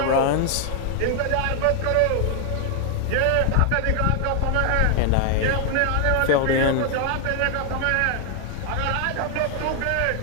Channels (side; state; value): both; different; correlation 0.00